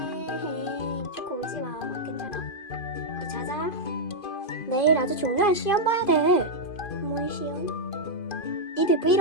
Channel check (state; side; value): late; right; 2.5 ms